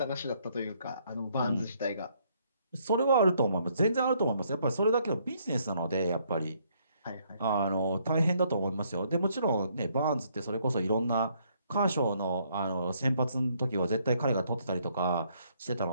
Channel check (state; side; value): inverted; both; correlation -0.69